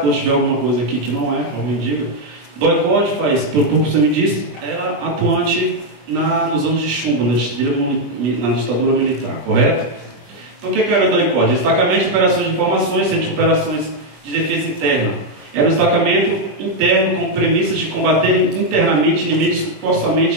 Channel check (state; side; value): late; left; 24 ms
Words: se tiver alguma coisa aqui que não é, alguém diga. DOI-CODE faz, pelo que você me disse, era atuante nos anos de chumbo, na ditadura militar, correto? Então o que era o DOI-CODE? Destacamento de operações de informações, centro de operações de defesa interna. Era um destacamento interno com premissas de combater internamente inimigos que supostamente